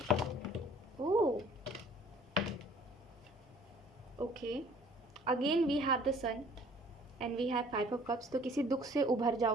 Oh, okay. Again we have the sun and we have 5 of cups. तो किसी दुख से उभर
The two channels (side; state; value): both; normal; correlation 0.54